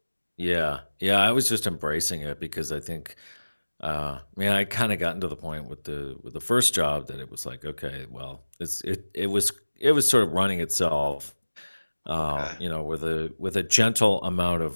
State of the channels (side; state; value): both; inverted; correlation -1.00